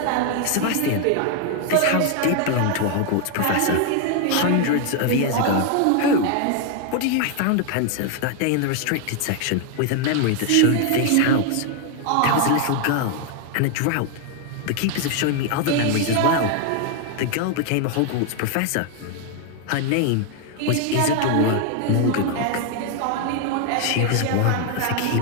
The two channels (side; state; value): both; different; correlation 0.00